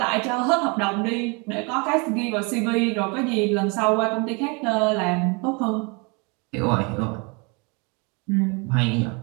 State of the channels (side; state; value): left; quieter; 31.1 dB